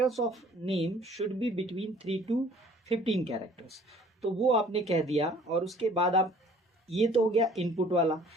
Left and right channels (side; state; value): both; normal; correlation 0.54